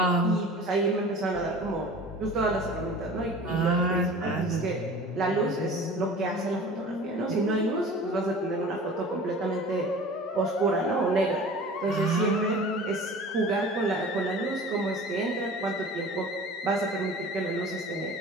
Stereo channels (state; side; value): normal; both; correlation 0.41